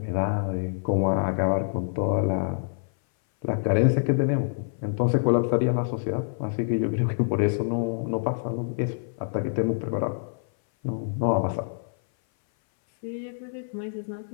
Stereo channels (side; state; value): right; silent; 58 dB below the other